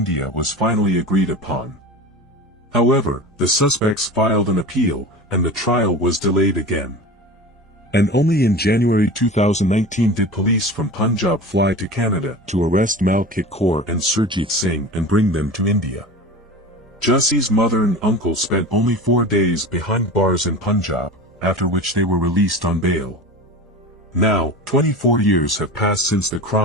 was finally agreed upon. However, the suspects filed an appeal, and the trial was delayed again. And only in January 2019 did police from Punjab fly to Canada to arrest Malkit Kaur and Surjit Singh and bring them to India. Jassi's mother and uncle spent only 4 days behind bars in Punjab, after which they were released on bail. Now, 24 years have passed since the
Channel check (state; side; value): normal; both; correlation 0.32